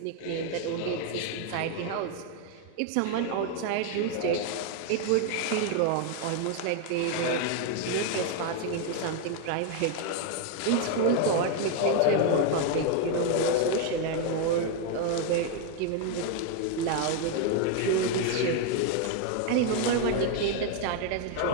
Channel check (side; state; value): both; different; correlation 0.01